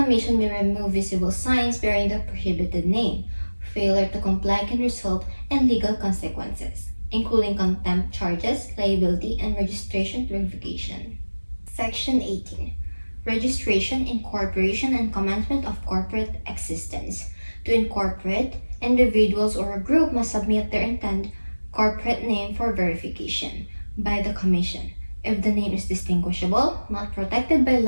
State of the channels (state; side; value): inverted; both; correlation -1.00